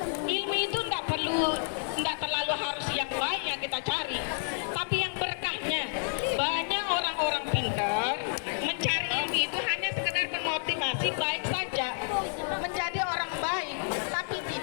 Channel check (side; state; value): right; silent; digital silence